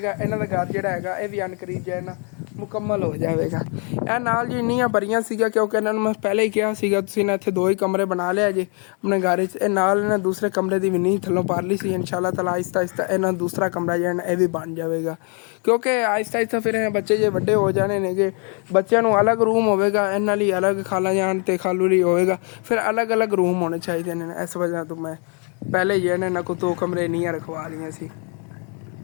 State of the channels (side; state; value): right; quieter; 38.1 dB